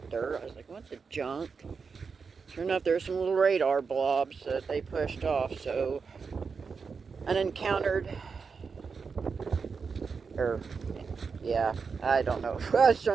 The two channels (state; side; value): quieter; left; 5.3 dB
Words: I was like, what the junk? Sure enough, there's some little radar blobs that they pushed off. So, an encountered. Or, yeah, I don't know. I was